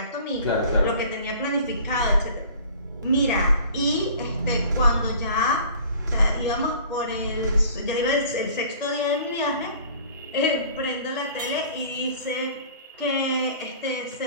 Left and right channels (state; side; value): inverted; both; correlation -0.47